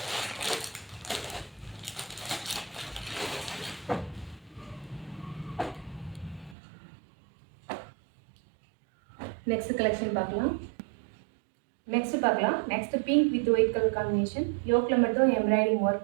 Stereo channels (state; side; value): drops out; left; at 6.6 s